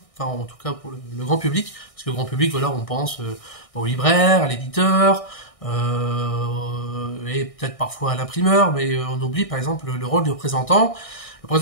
enfin en tout cas pour le grand public, parce que le grand public, voilà, on pense au libraire, à l'éditeur, et peut-être parfois à l'imprimeur, mais on oublie par exemple le rôle du représentant. Le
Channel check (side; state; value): right; late; 1.6 ms